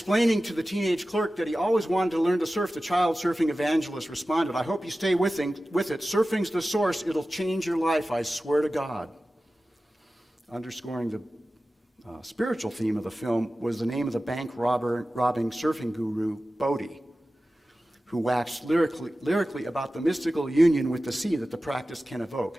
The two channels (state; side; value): normal; both; correlation 0.95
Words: to the teenage clerk that he always wanted to learn to surf, the child surfing evangelist responded, "I hope you stay with it. Surfing's the source. It'll change your life, I swear to God." Underscoring the spiritual theme of the film was the name of the bank robbing surfing guru, Bodhi, who waxed lyrically about the mystical union with the sea that the practice can